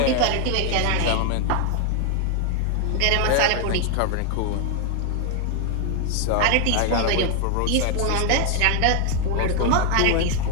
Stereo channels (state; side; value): different; both; correlation 0.00